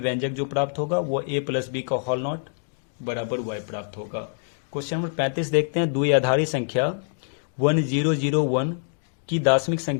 जो प्राप्त होगा वो a प्लस बी का होल नॉट बराबर y प्राप्त होगा। क्वेश्चन नंबर 35 देखते हैं, द्विआधारी संख्या 1001 की दशमिक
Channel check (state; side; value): silent; right; digital silence